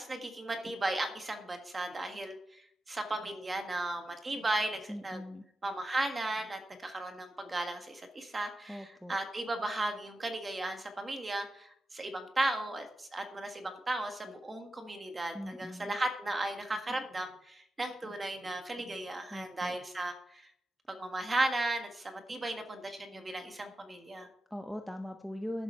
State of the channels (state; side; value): normal; both; correlation 0.91